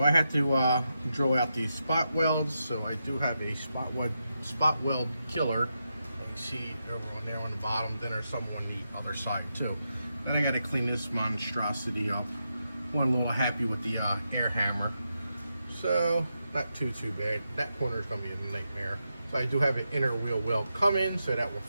I had to drill out these spot welds. So I do have a spot weld killer. You can see over on there on the bottom. Then there's some on the other side too. Then I got to clean this monstrosity up. One a little happy with the air hammer. So not too bad. That corner is going to be a nightmare. So I do have an inner wheel weld coming, so that will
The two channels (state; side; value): inverted; both; correlation -0.86